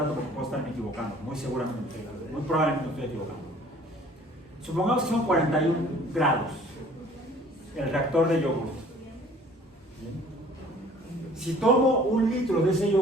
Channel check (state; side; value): normal; both; correlation 0.52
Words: porque puedo estarme equivocando, muy seguramente, muy probablemente me estoy equivocando. Supongamos que son 41 grados el reactor de yogur. Si tomo 1 litro de ese